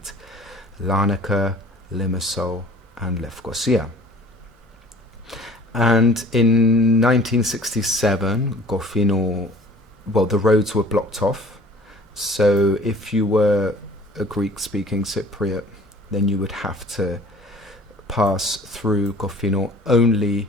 Larnaca, Limassol and Lefkosia. And in 1967, Kofinou, well, the roads were blocked off. So if you were a Greek-speaking Cypriot, then you would have to pass through Kofinou only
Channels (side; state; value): both; normal; correlation 0.49